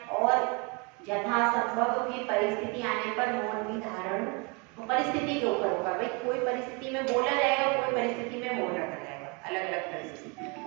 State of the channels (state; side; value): quieter; left; 31.3 dB